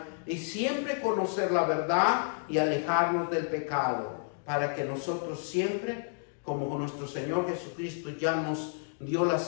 y siempre conocer la verdad y alejarnos del pecado, para que nosotros siempre, como nuestro Señor Jesucristo ya nos dio la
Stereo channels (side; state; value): right; silent; digital silence